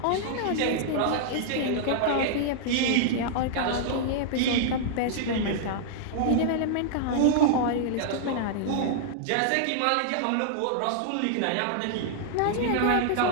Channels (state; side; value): different; both; correlation -0.01